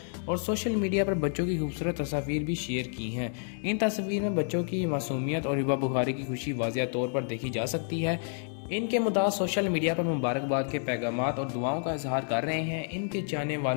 और सोशल मीडिया पर बच्चों की खूबसूरत तस्वीर भी शेयर की हैं। इन तस्वीर में बच्चों की मासूमियत और हिबा बुखारी की खुशी वाज़िया तौर पर देखी जा सकती है। इनके मुद्दा सोशल मीडिया पर मुबारकबाद के पैगामात और दुआओं का इजहार कर रहे हैं। इनके चाहने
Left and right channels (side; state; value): right; silent; 58 dB below the other